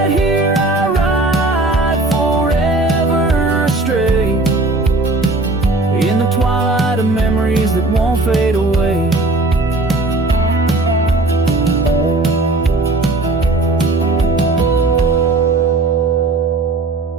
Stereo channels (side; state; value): left; quieter; 3.0 dB